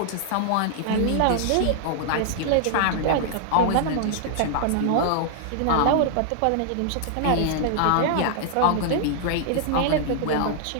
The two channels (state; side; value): different; both; correlation -0.01